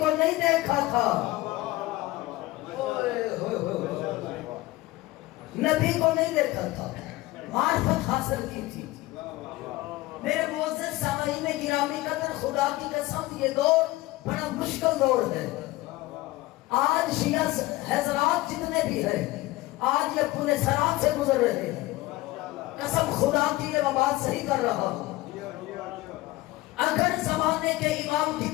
نہیں دیکھا تھا، نبی کو نہیں دیکھا تھا، معرفت حاصل کی تھی. میرے معزز سامعین گرامی قدر، خدا کی قسم یہ دور بڑا مشکل دور ہے. آج شیعہ حضرات جتنے بھی ہیں آج یہ پونے سرات سے گزر رہے ہیں. قسم خدا کی یہ بات صحیح کر رہا ہوں. اگر زمانے کے امام کی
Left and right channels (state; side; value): quieter; right; 18.8 dB